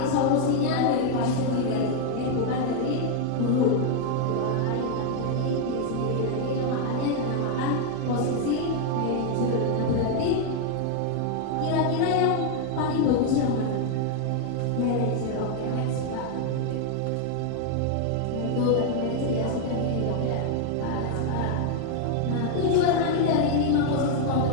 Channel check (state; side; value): different; both; correlation 0.00